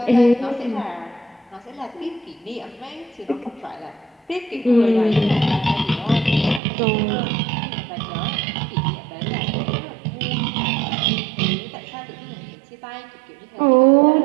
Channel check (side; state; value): left; drops out; at 6.6 s